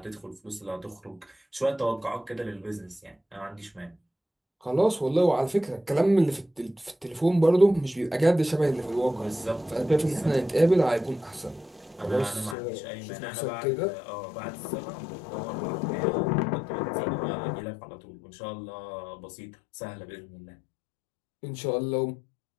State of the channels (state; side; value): drops out; right; at 12.6 s